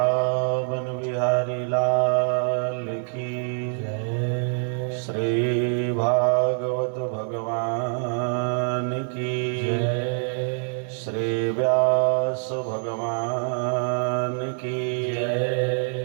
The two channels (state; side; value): silent; left; 62 dB below the other